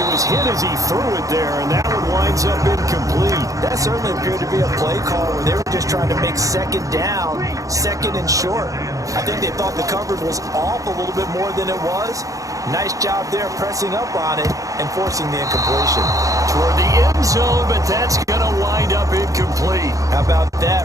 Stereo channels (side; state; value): left; late; 0.16 ms